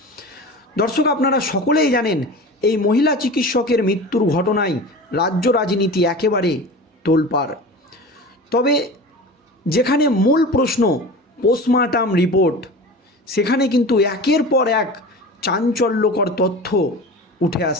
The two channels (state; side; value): normal; both; correlation 0.34